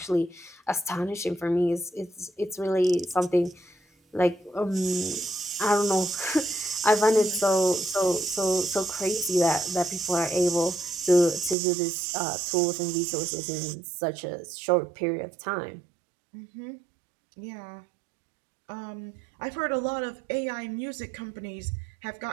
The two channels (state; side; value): drops out; left; at 11.6 s